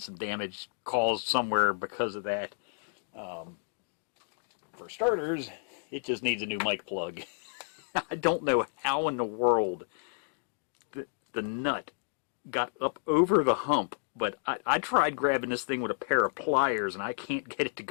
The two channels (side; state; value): right; silent; digital silence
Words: damage caused somewhere because of that. For starters, it just needs a new mic plug. I don't know how in the world the nut got up over the hump, but I tried grabbing this thing with a pair of pliers and I can't get it to